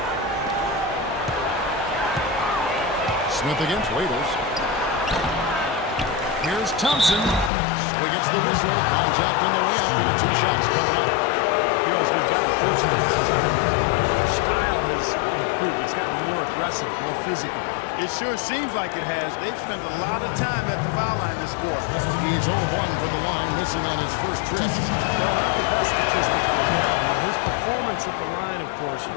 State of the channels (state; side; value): drops out; right; at 7.5 s